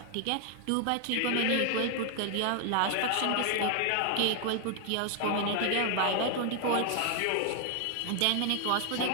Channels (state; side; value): different; both; correlation 0.00